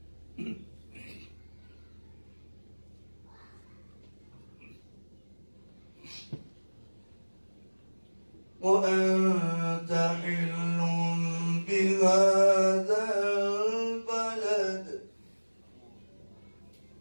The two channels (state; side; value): inverted; both; correlation -1.00